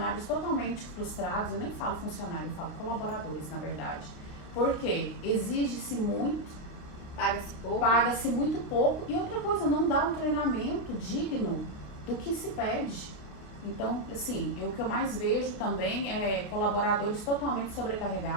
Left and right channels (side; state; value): right; late; 28 ms